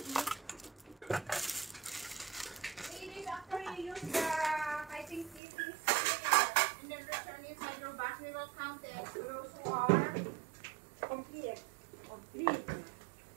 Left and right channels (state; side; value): drops out; left; at 5.4 s